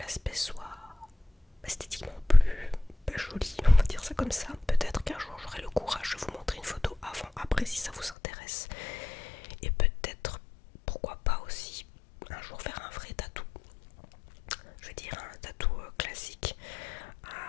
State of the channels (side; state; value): right; drops out; at 8.2 s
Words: comme ça. Peut-être qu'un jour j'aurai le courage de vous montrer une photo avant, après si ça vous intéresse. Et peut-être, pourquoi pas aussi, un jour faire un vrai tatou. Je veux dire un tatou classique,